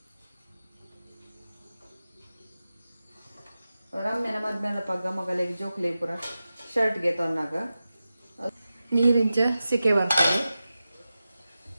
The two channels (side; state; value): both; inverted; correlation -0.93